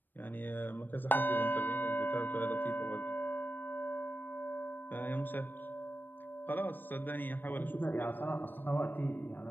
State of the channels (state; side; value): late; right; 0.092 ms